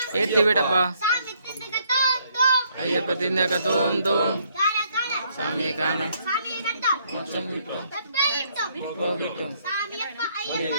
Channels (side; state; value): both; inverted; correlation -0.69